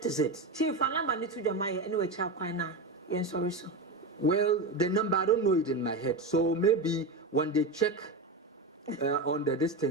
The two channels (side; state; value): left; quieter; 3.0 dB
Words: is it. Chief, I number need to Jamaica anyway. Child, now. Yes, sorry, so. Well, the number I don't know it in my head. So maybe when they check on the